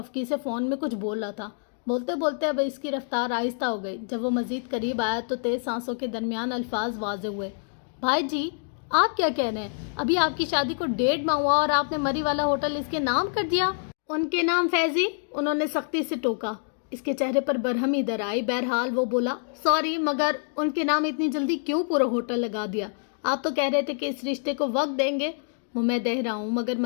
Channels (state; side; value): silent; right; digital silence